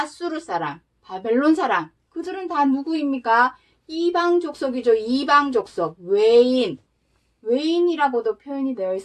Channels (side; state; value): both; identical; correlation 1.00